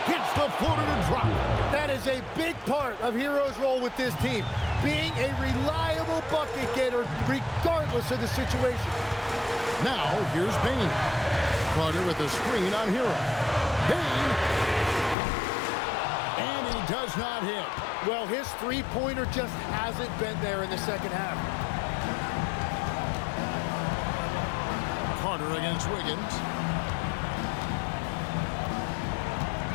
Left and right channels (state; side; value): drops out; right; at 15.2 s